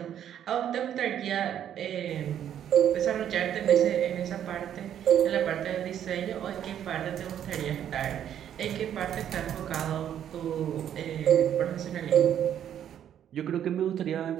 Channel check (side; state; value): left; quieter; 10.0 dB